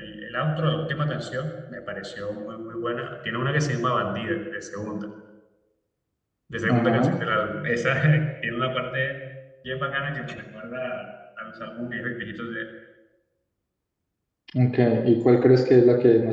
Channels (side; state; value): both; identical; correlation 1.00